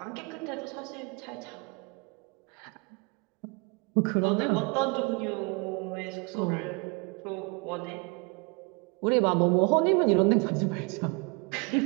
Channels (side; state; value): left; quieter; 29.9 dB